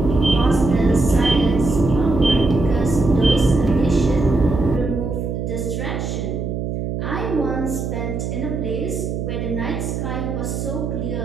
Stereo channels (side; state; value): right; noise; hum, 3 dB below the sound